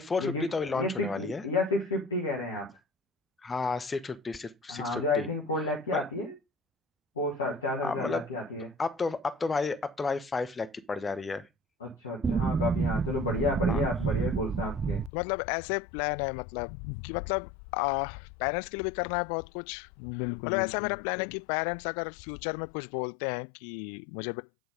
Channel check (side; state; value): right; drops out; at 15.1 s